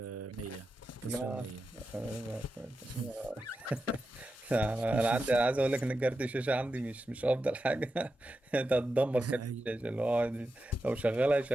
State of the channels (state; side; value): normal; both; correlation 0.90